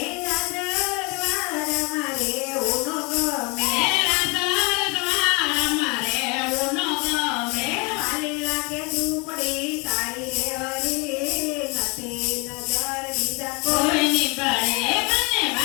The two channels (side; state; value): right; quieter; 30.3 dB